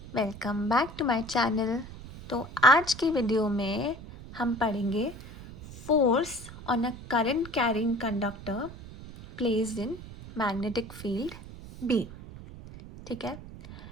welcome back to my channel. तो आज की वीडियो में हम पढ़ेंगे force on a current carrying conductor placed in magnetic field B. ठीक है,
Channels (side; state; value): right; noise; rumble, 14 dB below the sound